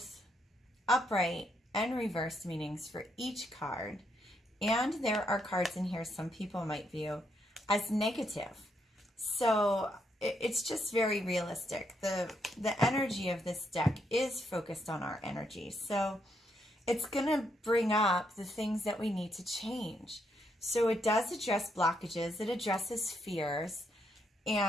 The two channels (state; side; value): normal; both; correlation 0.77